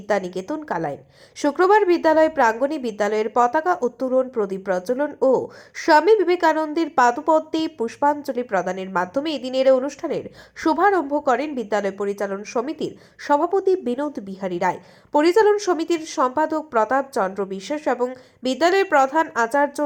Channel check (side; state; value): both; identical; correlation 1.00